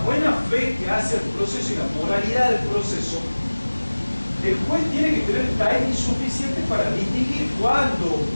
fe que hace el proceso y la moralidad del proceso, el juez tiene que tener timing suficiente para distinguir cuando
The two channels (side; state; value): both; inverted; correlation -1.00